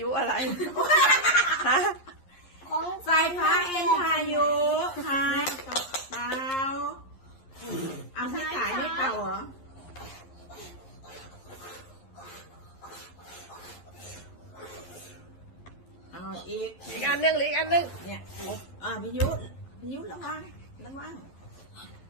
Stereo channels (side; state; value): right; late; 11 ms